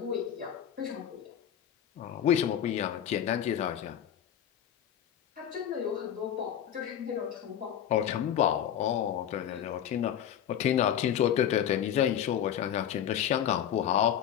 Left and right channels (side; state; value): right; quieter; 9.9 dB